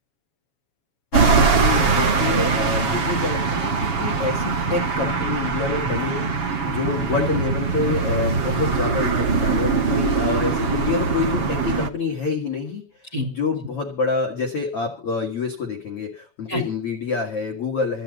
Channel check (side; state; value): right; late; 7.2 ms